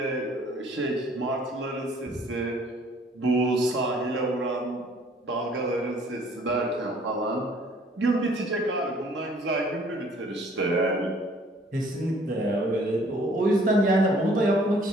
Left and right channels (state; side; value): normal; both; correlation 0.58